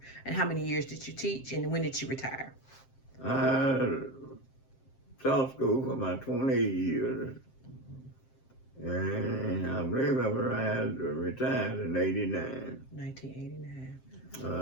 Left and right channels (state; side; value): late; right; 7.6 ms